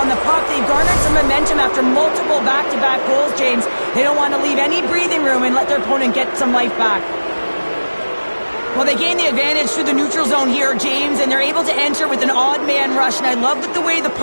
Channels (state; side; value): inverted; both; correlation -1.00